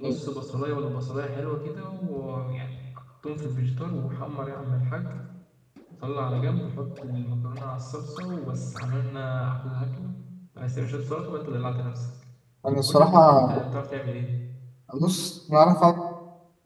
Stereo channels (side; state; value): both; identical; correlation 1.00